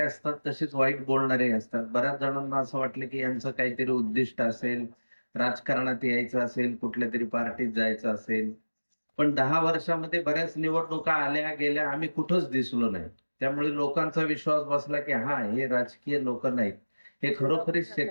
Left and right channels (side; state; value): both; inverted; correlation -1.00